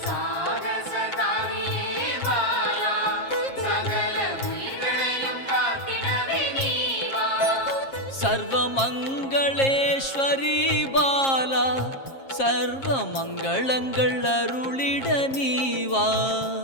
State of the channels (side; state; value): right; late; 7.4 ms